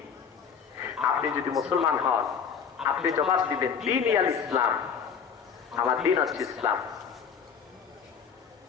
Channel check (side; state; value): right; quieter; 6.8 dB